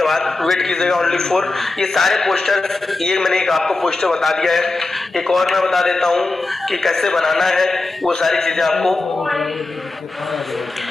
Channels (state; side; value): quieter; right; 3.3 dB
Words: बाद वेट कीजिएगा ओनली फॉर ये सारे पोस्टर। ये मैंने एक आपको पोस्टर बता दिया है, एक और मैं बता देता हूँ कि कैसे बनाना है वो सारी चीजें आपको।